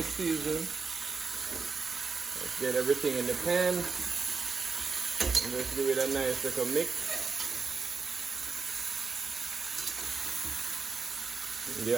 seasoning. Let's get everything in the pan. And just give it a nice little mix.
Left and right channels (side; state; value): left; quieter; 4.8 dB